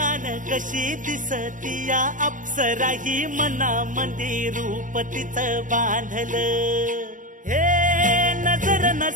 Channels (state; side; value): late; left; 0.38 ms